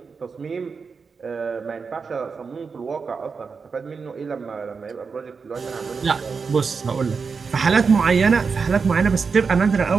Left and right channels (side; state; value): left; quieter; 5.2 dB